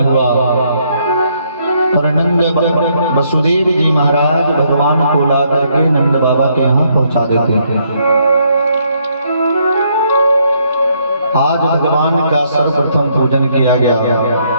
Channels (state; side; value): inverted; both; correlation -0.71